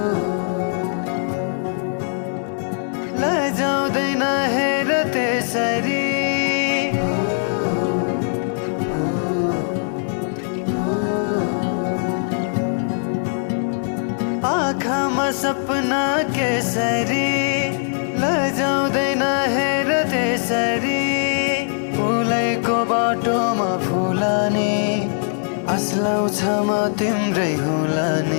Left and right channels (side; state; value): right; silent; digital silence